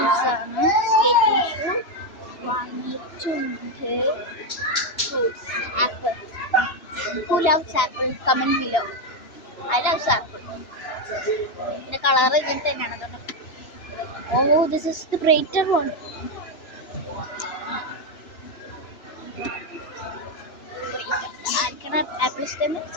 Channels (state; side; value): late; right; 3.0 ms